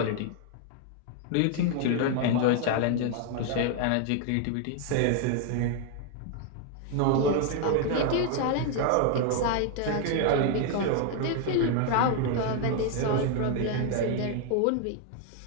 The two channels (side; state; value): both; different; correlation 0.01